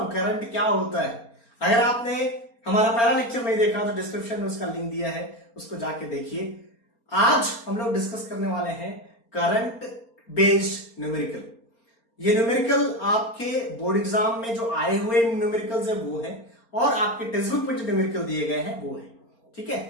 करंट क्या होता है। अगर आपने हमारा पहला लेक्चर नहीं देखा तो डिस्क्रिप्शन में उसका लिंक दिया है, उसको जाके देखिए। आज हम लोग डिस्कस करने वाले हैं करंट बेस्ड न्यूमेरिकल। ये न्यूमेरिकल आपके बोर्ड एग्जाम में जो आए हुए न्यूमेरिकल्स है वो है, और आपके टेक्स्ट बुक में जो न्यूमेरिकल दिए गए हैं वो है। ठीक है,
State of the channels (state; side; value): late; right; 4.3 ms